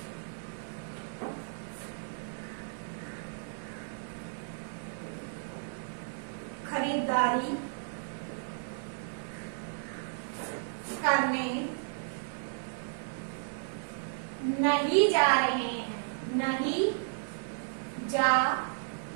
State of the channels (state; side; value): silent; left; digital silence